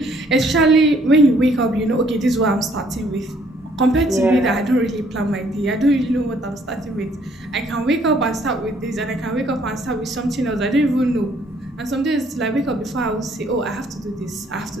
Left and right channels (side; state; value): both; normal; correlation 0.64